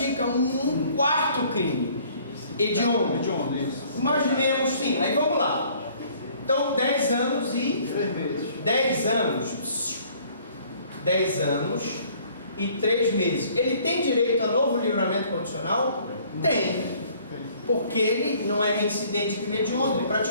um 4º crime. Hediondo. Hediondo, isso. Imaginemos, sim, aí vamos lá. Então, 10 anos e... 3 meses. 10 anos. 10 anos e 3 meses. Ele tem direito a novo livramento condicional? Tem. Porque ele não é reincidente de hediondo. Ele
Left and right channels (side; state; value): both; inverted; correlation -0.58